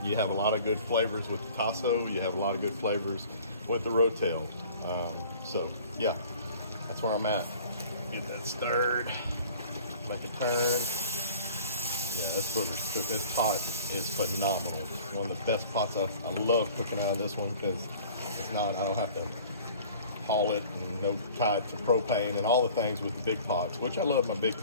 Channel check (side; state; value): both; inverted; correlation -0.48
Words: you have a lot of good flavors with the tasso. You have a lot of good flavors with the rotel. So yeah, that's where I'm at. Get that stirred, make a turn. Yeah, this booger's cooked. This pot is phenomenal. It's one of the best pots. I love cooking out of this one because it's not, I don't have to haul it and no tied to propane and all the things with the big pots, which I love my big